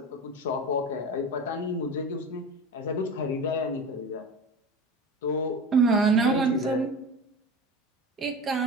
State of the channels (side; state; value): both; normal; correlation 0.30